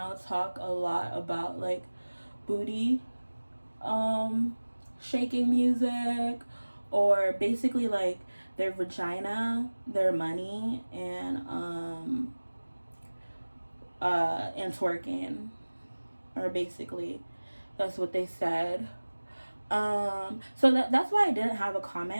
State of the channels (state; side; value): inverted; both; correlation -1.00